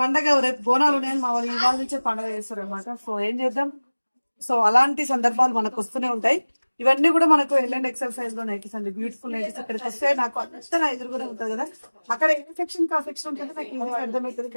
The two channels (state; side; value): inverted; both; correlation -1.00